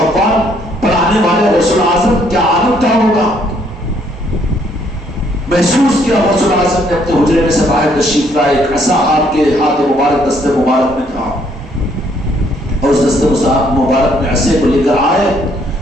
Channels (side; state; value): both; normal; correlation 0.67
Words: پڑھانے والے غوث اعظم کیا عالم کیا ہوگا، محسوس کیا غوث اعظم نے اپنے حجرے میں سے باہر تشریف لائے، ایک عصا آپ کے ہاتھ مبارک دست مبارک میں تھا، اور اس دست مبارک میں عصے کو لے کر آئے